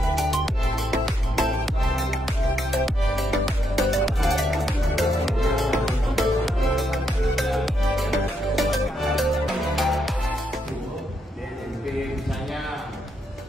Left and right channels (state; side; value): normal; both; correlation 0.79